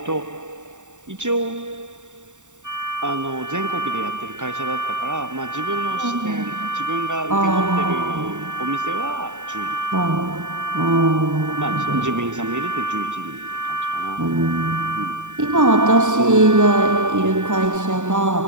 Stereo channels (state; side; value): late; left; 0.85 ms